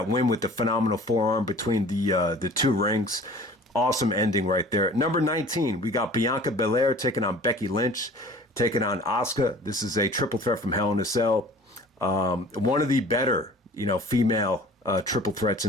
win with the phenomenal forearm between the two rings. Awesome ending right there. Number 19, we got Bianca Belair taking on Becky Lynch, taking on Asuka. This is a triple threat from Hell in a Cell. One of the better, female triple threats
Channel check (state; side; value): normal; both; correlation 0.46